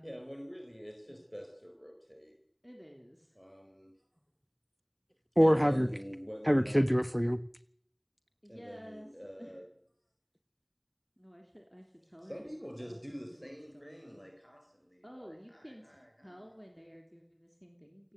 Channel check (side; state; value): both; identical; correlation 1.00